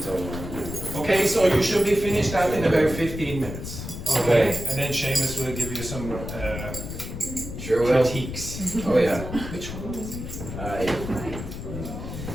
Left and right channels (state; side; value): noise; left; rumble, 8 dB below the sound